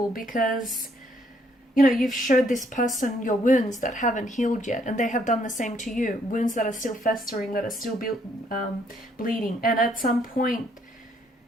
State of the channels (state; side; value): normal; both; correlation 0.69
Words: because, you know, you've showed this person your wounds that haven't healed yet, and they have done the same to you. Wounds that are still festering, that are still bleeding. And at some point,